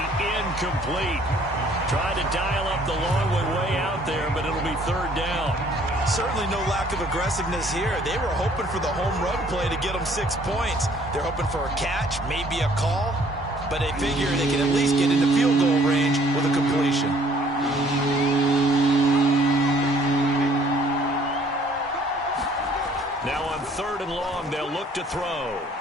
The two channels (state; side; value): normal; both; correlation 0.59